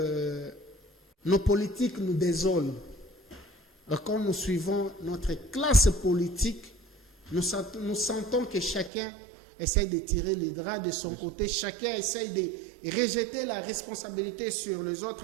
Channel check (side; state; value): left; drops out; at 8.9 s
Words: nos politiques nous désolent. Quand nous suivons notre classe politique, nous sentons que chacun essaye de tirer les draps de son côté, chacun essaye de rejeter la responsabilité sur les